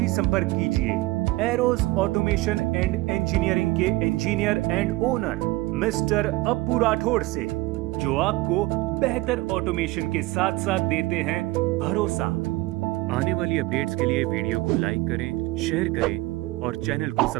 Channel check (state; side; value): quieter; left; 20.1 dB